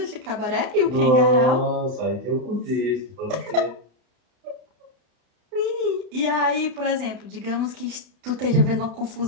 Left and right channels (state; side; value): late; left; 31 ms